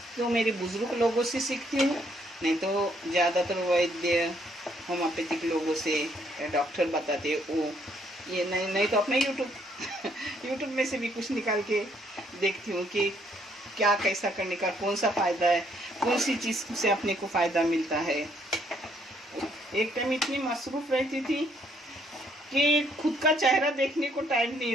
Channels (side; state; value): both; normal; correlation 0.69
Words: तो मेरे बुजुर्ग लोगों से सीखती हूँ, नहीं तो ज़्यादातर वैद्य होम्योपैथिक लोगों से, डॉक्टर बताते वो, ये नहीं तो अपने यूट्यूब में से भी कुछ निकाल के देखती हूँ कि क्या कैसा करने का, कौन सा फ़ायदा है, कौन सी चीज़ से अपने को फ़ायदा मिलता है। एक टाइम इतनी मसरूफ रहती थी कि खुद का चेहरा देखने को टाइम